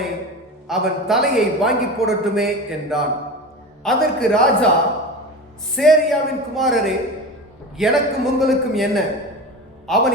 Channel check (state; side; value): normal; both; correlation 0.29